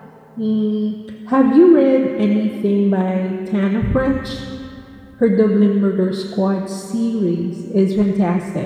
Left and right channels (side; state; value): both; identical; correlation 1.00